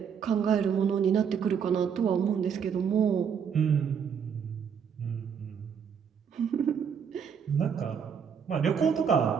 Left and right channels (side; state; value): left; quieter; 7.2 dB